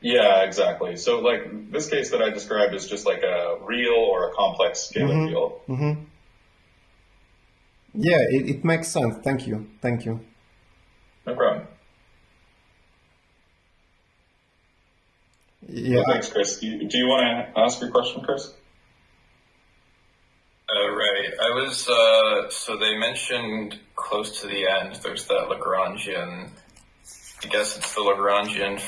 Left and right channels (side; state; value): both; identical; correlation 1.00